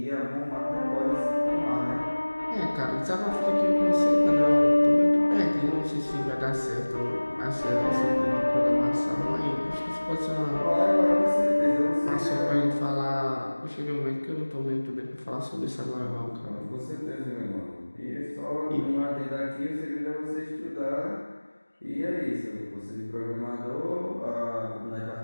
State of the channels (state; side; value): inverted; both; correlation -1.00